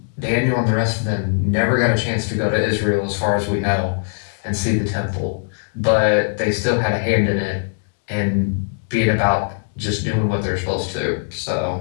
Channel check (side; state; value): right; silent; digital silence